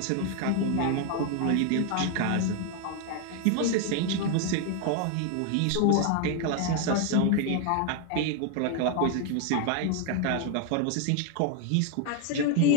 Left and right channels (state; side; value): different; both; correlation 0.00